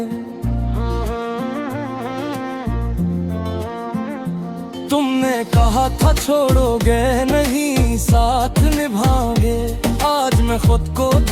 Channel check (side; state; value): both; identical; correlation 1.00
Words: तुमने कहा था छोड़ोगे नहीं, साथ निभाओगे। आज मैं खुद को